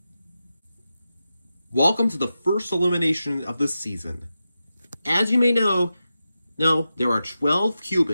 Welcome to the first elimination of this season. As you may know, there are 12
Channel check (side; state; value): both; inverted; correlation -0.91